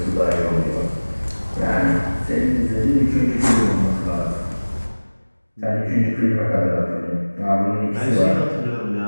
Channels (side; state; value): both; inverted; correlation -1.00